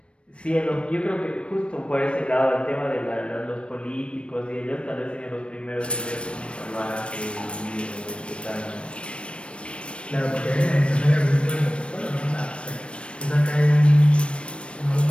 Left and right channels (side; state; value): right; late; 0.059 ms